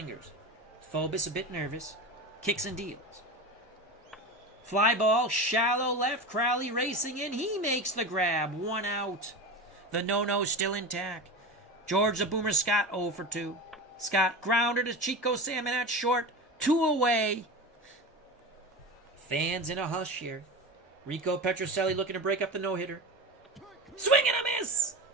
Phobos a bit nervous. Kicks and deals. Fly ball, shallow left. Crowley racing in. He makes the grab. 1 out. The no-no still intact. George the Boomer Scott 0 for 2. Scott grounder to Chico Salmon at short. 2 away. Fans in a hush here. Rico Petrocelli looking to break up the no-hitter. Swing and a miss!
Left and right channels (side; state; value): both; normal; correlation 0.26